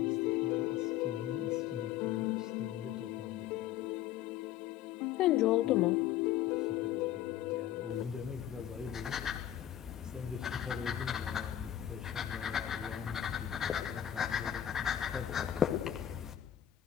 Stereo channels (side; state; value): right; quieter; 11.3 dB